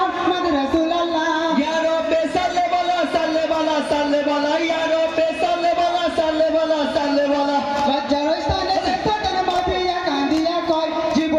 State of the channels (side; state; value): both; identical; correlation 1.00